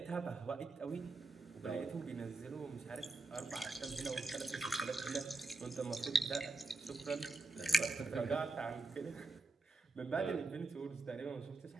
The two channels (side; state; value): left; quieter; 3.2 dB